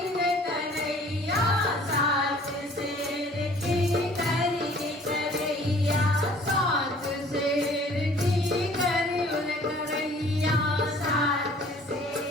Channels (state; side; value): normal; both; correlation 0.53